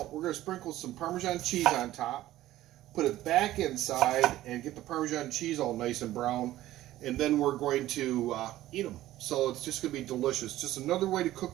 We're going to sprinkle some Parmesan cheese on top, put it back inside, and get the Parmesan cheese all nice and brown. And then we're going to eat them. So it's just going to be delicious. Just another way to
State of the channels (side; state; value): left; quieter; 14.9 dB